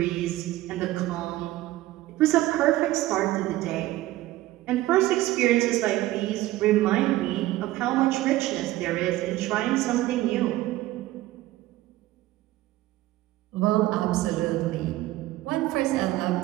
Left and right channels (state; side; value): quieter; left; 16.6 dB